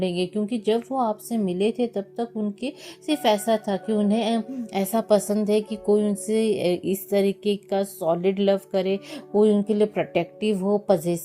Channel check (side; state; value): both; identical; correlation 1.00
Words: क्योंकि जब वो आपसे मिले थे तब तक उनके सिर्फ ऐसा था कि उन्हें ऐसा पसंद है कि कोई उनसे इस तरीके का सॉलिड लव करे, कोई उनके लिए प्रोटेक्टिव हो,